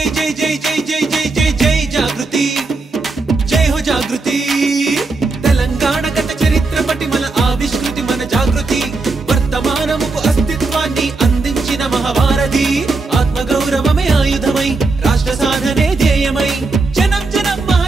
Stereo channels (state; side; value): quieter; left; 3.7 dB